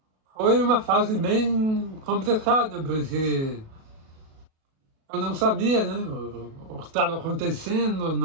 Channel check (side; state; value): left; late; 37 ms